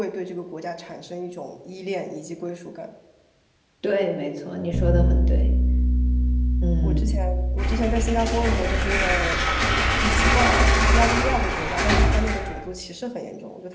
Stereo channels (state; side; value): identical; both; correlation 1.00